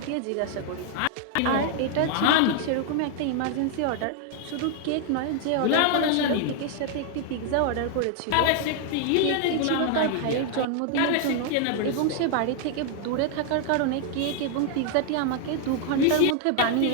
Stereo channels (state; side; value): different; both; correlation 0.00